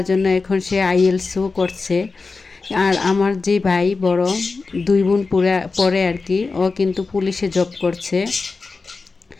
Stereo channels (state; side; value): quieter; right; 4.1 dB